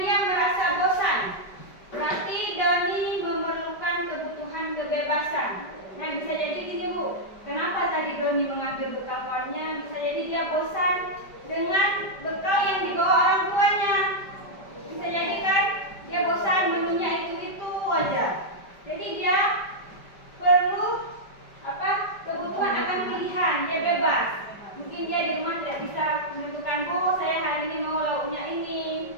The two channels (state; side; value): late; right; 5.1 ms